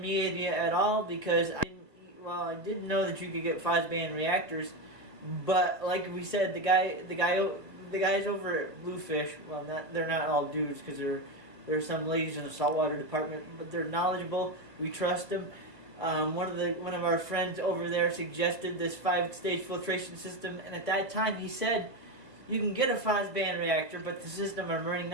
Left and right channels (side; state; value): left; late; 1.4 ms